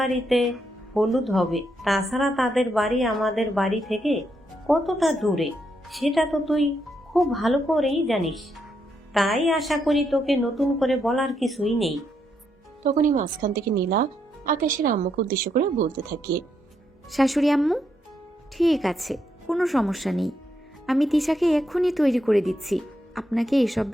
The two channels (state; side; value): normal; both; correlation 0.79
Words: হলুদ হবে। তাছাড়া তাদের বাড়ি আমাদের বাড়ি থেকে কতটা দূরে সেটা তো তুই খুব ভালো করেই জানিস। তাই আশা করি তোকে নতুন করে বলার কিছুই নেই। তখনই মাঝখান থেকে নীলা আকাশের আম্মুকে উদ্দেশ্য করে বলতে থাকে, শাশুড়ি আম্মু, ঠিক আছে, কোনো সমস্যা নেই। আমি তিশাকে এক্ষুনি তৈরি করে দিচ্ছি। আপনাকে এসব